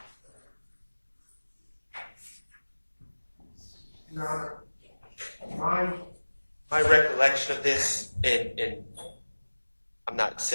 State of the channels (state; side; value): inverted; both; correlation -1.00